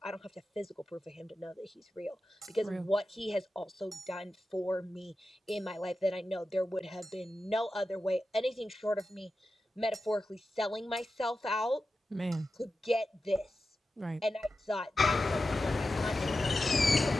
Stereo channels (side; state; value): both; normal; correlation 0.92